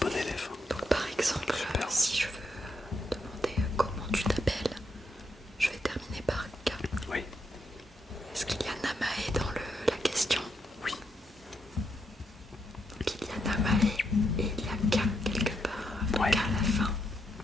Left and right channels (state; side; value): normal; both; correlation 0.79